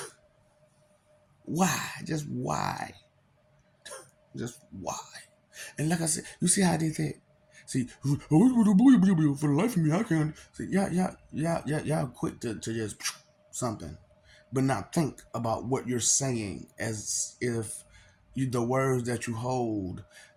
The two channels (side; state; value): both; identical; correlation 1.00